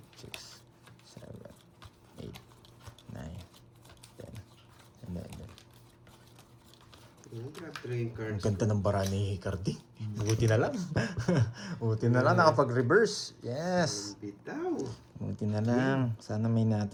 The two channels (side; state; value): both; identical; correlation 1.00